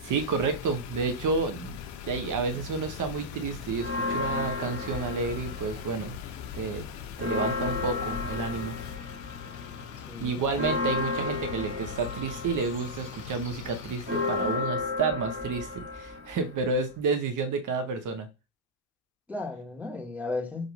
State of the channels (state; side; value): normal; both; correlation -0.08